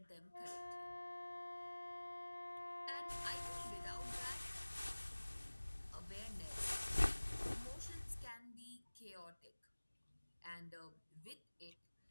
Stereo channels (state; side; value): inverted; both; correlation -1.00